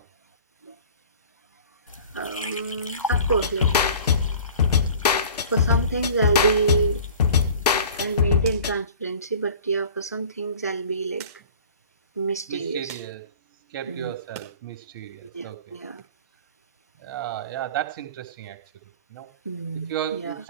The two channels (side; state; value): both; inverted; correlation -0.44